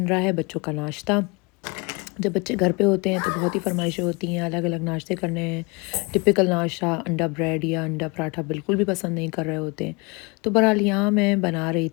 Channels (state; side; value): quieter; right; 28.6 dB